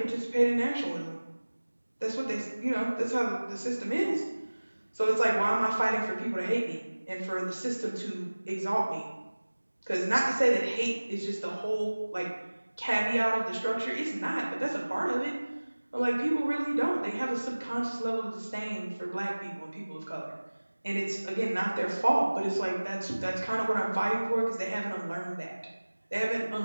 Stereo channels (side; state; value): both; inverted; correlation -1.00